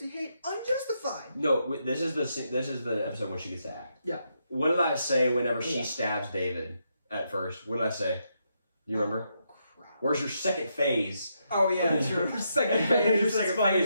hate unjustified. No, this is the episode when she gets to act. Yeah. What did I say whenever she stabs David at first? What did I say? Do you remember? Oh, crap. Where's your second phase? Oh yeah, true. Second phase. Your second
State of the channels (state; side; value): inverted; both; correlation -0.80